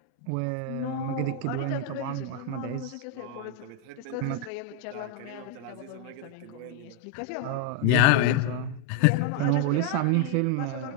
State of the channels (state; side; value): different; both; correlation 0.00